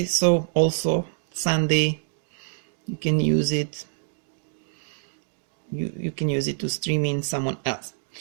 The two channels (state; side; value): silent; left; digital silence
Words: so also Sunday you can use it. You can use it to stream in someone else.